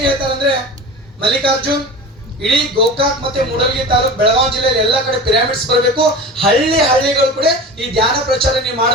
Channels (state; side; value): normal; both; correlation 0.33